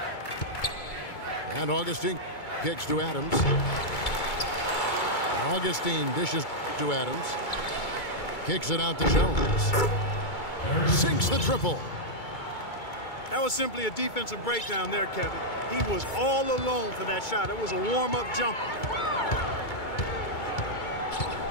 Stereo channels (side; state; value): right; late; 2.3 ms